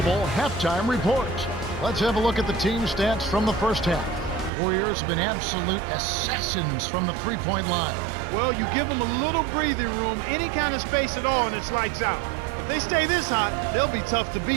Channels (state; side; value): drops out; left; at 4.5 s